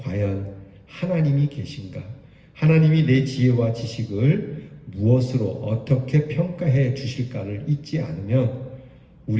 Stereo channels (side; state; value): both; identical; correlation 1.00